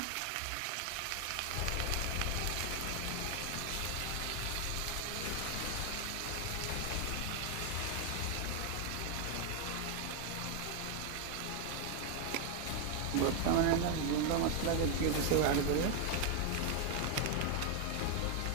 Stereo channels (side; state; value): both; different; correlation 0.01